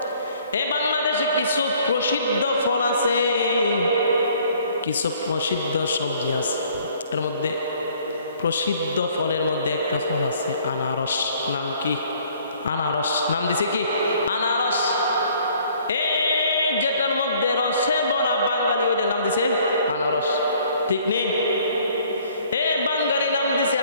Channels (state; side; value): inverted; both; correlation -0.59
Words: এই বাংলাদেশে কিছু প্রসিদ্ধ ফল আছে, কিছু প্রসিদ্ধ সবজি আছে, এর মধ্যে প্রসিদ্ধ ফলের মধ্যে একটা ফল আছে আনারস। নাম কি? আনারস। নাম দিছে কি? আনারস। এই যেটার মধ্যে রসে ভরা বাঙালি, ওইটার নাম দিছে আনারস, ঠিক নেই? এ বাঙালি নাম দিছে